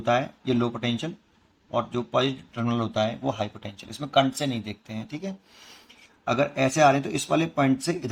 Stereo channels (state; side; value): identical; both; correlation 1.00